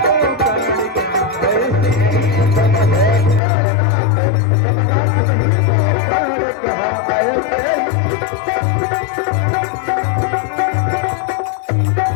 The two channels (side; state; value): right; drops out; at 3.4 s